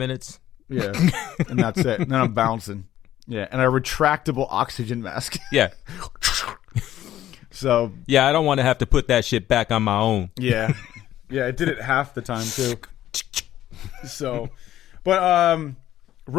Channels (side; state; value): right; quieter; 12.8 dB